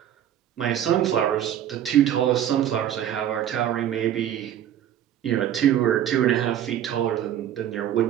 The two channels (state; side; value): quieter; left; 10.8 dB